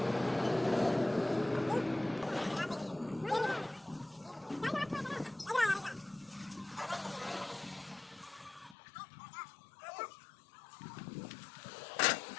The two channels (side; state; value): right; drops out; at 8.8 s